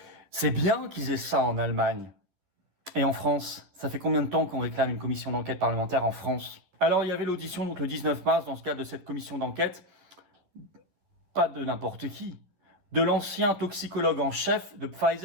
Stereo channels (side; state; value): left; late; 11 ms